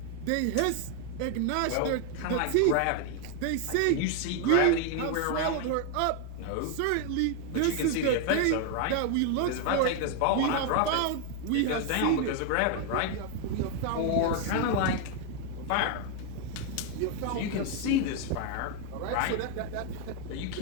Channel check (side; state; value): both; different; correlation 0.00